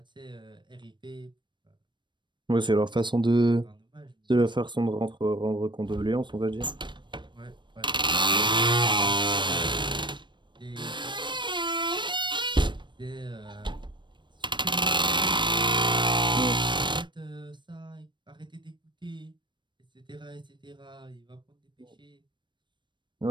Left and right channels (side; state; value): left; late; 0.22 ms